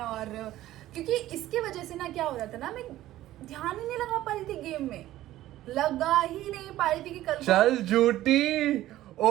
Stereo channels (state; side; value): quieter; left; 14.6 dB